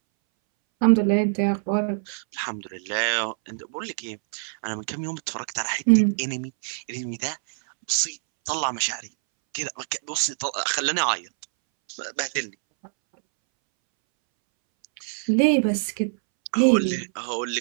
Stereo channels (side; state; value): left; silent; 62 dB below the other